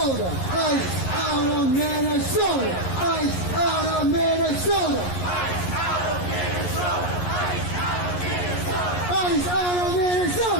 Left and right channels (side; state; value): right; late; 11 ms